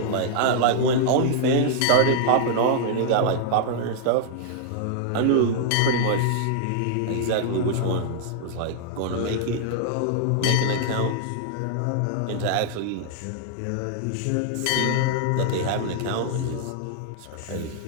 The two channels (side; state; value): both; different; correlation -0.01